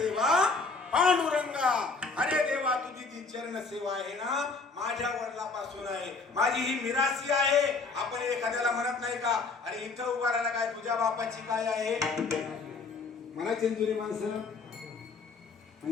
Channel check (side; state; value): right; quieter; 4.2 dB